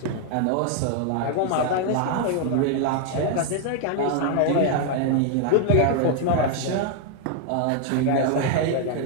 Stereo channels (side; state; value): both; different; correlation 0.00